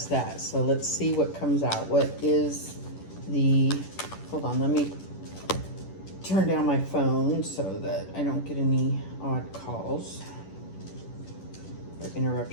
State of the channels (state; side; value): late; right; 10 ms